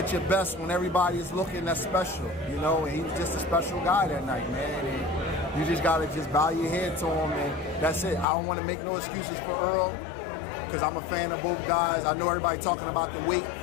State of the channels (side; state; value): right; drops out; at 8.2 s